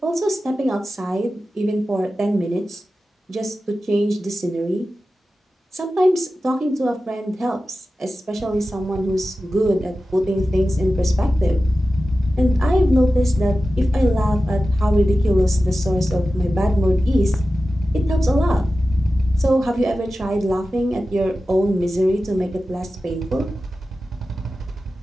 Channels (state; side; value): normal; both; correlation 0.94